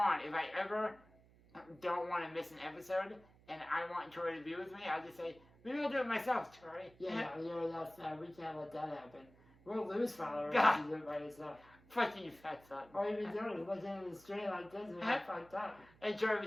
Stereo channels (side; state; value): right; noise; hum, 26 dB below the sound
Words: on, if I ever don't want to miss an episode and I want Troy to be with me, I'll just say, maybe I'll do it myself, Troy. Yeah, that's we can't let that happen. We'll lose followers if you do it by yourself. Fuck you, fat son. All you be doing is looking in the street like this and you're fucked up. And Troy